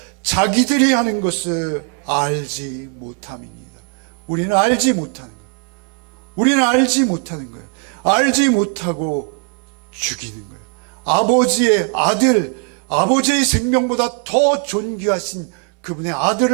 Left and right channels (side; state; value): left; quieter; 36.9 dB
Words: 자기들이 하는 것을 알지 못함이니이다. 우리는 알지 못하는 거예요. 알지 못하고 죽이는 거예요. 아버지의 아들, 아버지의 생명보다 더 존귀하신 그분의